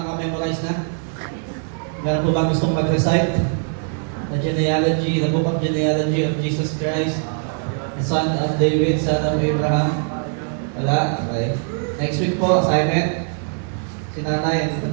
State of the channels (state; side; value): silent; left; 55 dB below the other